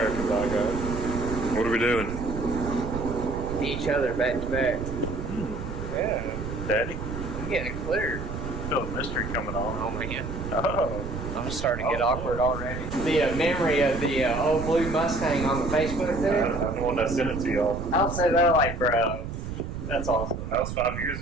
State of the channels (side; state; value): right; noise; rumble, 6 dB below the sound